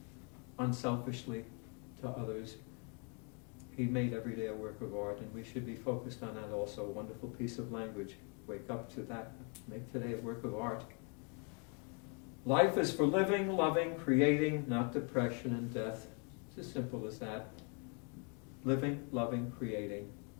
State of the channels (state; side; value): quieter; right; 37.3 dB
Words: unselfishly to others. He made every day a work of art, and we should be focused on that also. A wonderful piece of language. Wake up to that. Make today a work of art. Life is for living, loving, creating, not depression and death. It's as simple as that. Living, loving, creating.